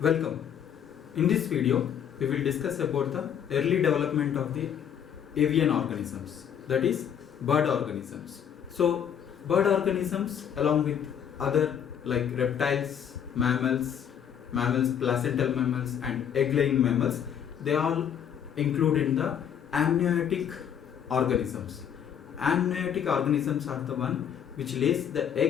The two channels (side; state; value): right; quieter; 8.7 dB